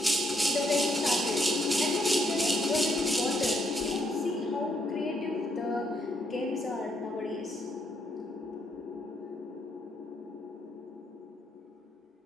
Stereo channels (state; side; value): normal; both; correlation 0.74